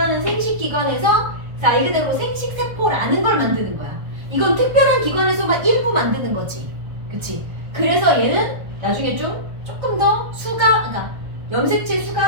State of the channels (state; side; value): late; left; 1.3 ms